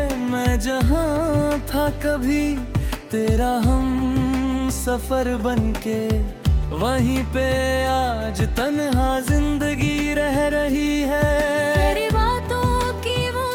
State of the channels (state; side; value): identical; both; correlation 1.00